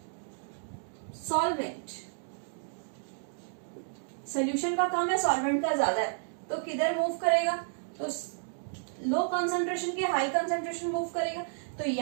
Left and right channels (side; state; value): left; silent; digital silence